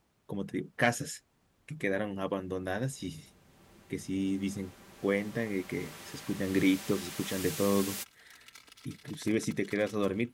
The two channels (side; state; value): both; identical; correlation 1.00